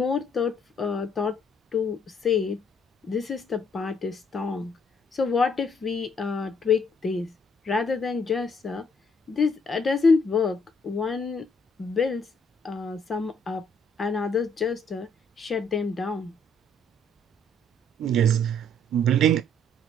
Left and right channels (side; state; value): both; normal; correlation 0.66